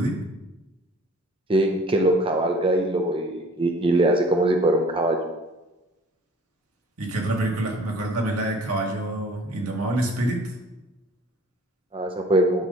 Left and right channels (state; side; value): normal; both; correlation 0.50